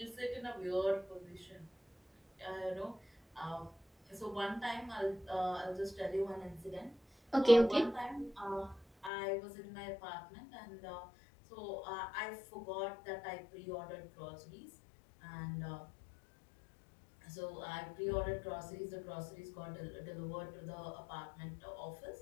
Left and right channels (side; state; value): right; drops out; at 9.1 s